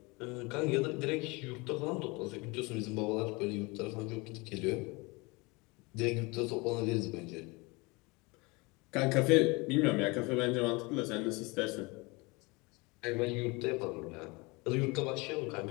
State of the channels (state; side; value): quieter; right; 26.2 dB